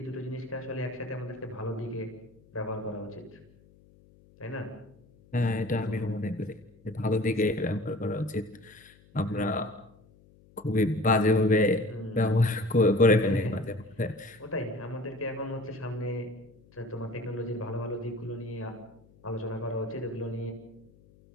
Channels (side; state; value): left; noise; hum, 27 dB below the sound